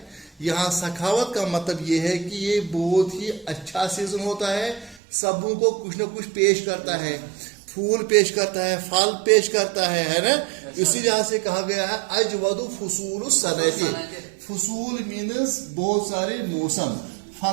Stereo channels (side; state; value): left; drops out; at 5.0 s